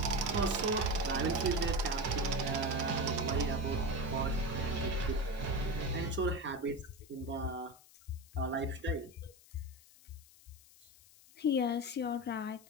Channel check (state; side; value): noise; left; hiss, 24 dB below the sound